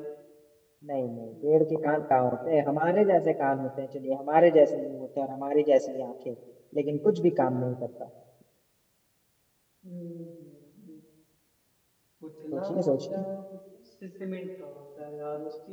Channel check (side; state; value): both; identical; correlation 1.00